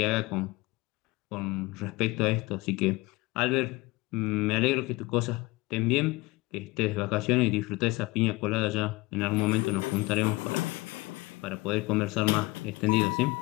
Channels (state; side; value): quieter; right; 22.1 dB